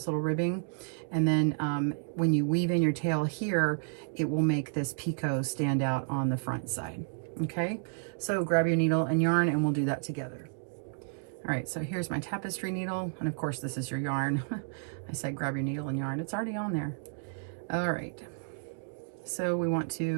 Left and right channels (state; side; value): silent; left; digital silence